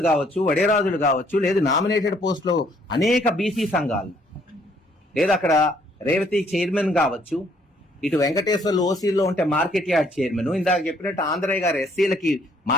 కావచ్చు, వడేరాజులు కావచ్చు, లేదు నామినేటెడ్ పోస్టులో అనేక బీసీ సంఘాలు, లేదు అక్కడ రేవతి చైర్మన్ కావచ్చు, ఇటు వెంకటేశ్వర్లు ఓసీలో ఉంటే మార్కెట్ యార్డ్ చైర్మన్, ఇందాక చెప్పినట్టు ఆంధ్రయ్య గారు ఎస్సీలకి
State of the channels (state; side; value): normal; both; correlation 0.65